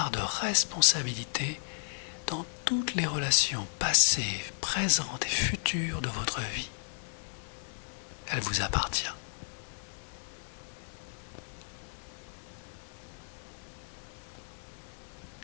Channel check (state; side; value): silent; right; 55 dB below the other